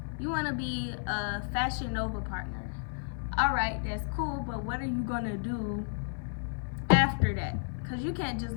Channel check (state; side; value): silent; right; digital silence